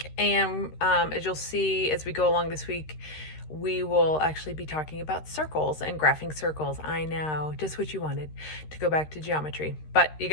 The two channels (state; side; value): late; right; 13 ms